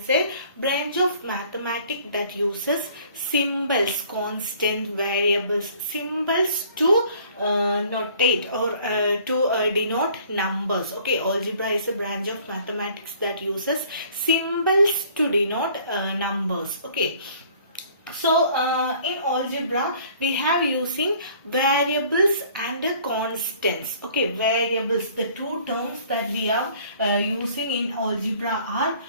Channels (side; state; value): both; inverted; correlation -0.55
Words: a branch of mathematics that uses symbols, constant variables, symbols to notate or to denote numbers. Okay, algebra is a branch of mathematics that uses symbols to denote numbers. Okay. So, in algebra, we have using variables and constants. Okay, variables, the two terms that we are using in algebra are